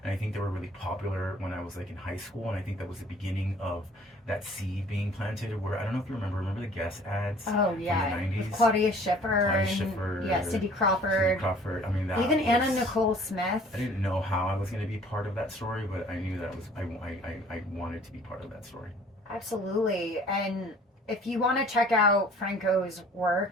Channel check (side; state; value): both; normal; correlation 0.53